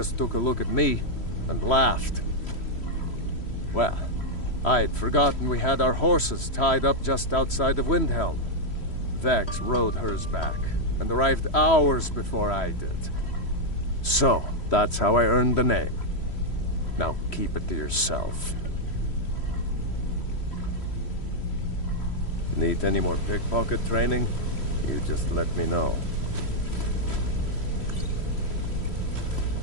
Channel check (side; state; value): right; late; 3.1 ms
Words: took a look at me and laughed. Well, I had forgotten we had our horses tied up just outside of Windhelm. Vex rode hers back and arrived hours before I did. So, that's how I earned the name. Now keep it to yourself. Need any more pickpocket training? You just let me know.